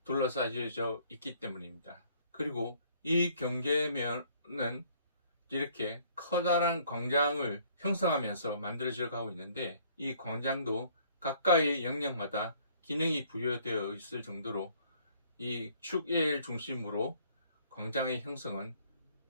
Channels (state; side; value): inverted; both; correlation -0.60